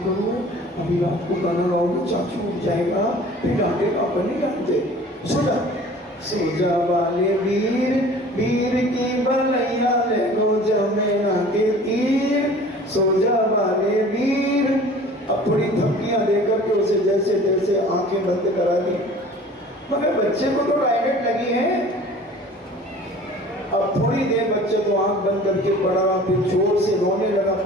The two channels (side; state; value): both; normal; correlation 0.46